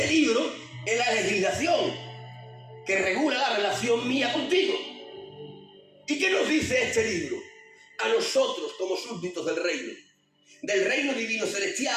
libro es la legislación que regula la relación mía contigo. ¿Y qué nos dice este libro? A nosotros como súbditos del reino divino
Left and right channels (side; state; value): both; identical; correlation 1.00